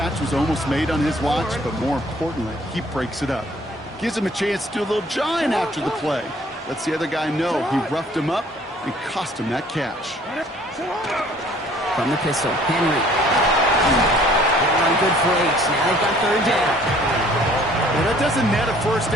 was almost made on his watch, but more importantly, he breaks it up. Gives him a chance to do a little jawing after the play. Lets the other guy know he roughed him up and cost him that catch. From the pistol, Henry. Run good for 8. Now they've got 3rd down. Well, that doesn't net a 1st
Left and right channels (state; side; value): normal; both; correlation 0.56